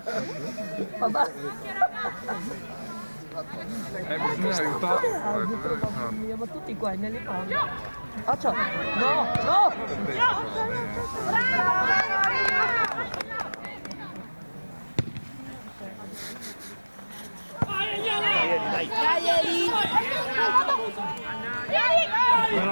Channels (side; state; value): both; inverted; correlation -1.00